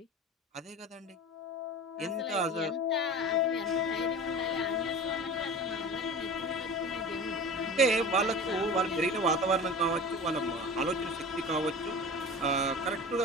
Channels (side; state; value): both; normal; correlation 0.35